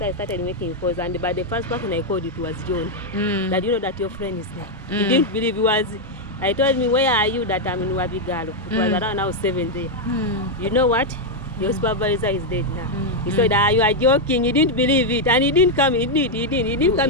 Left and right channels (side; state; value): both; normal; correlation 0.00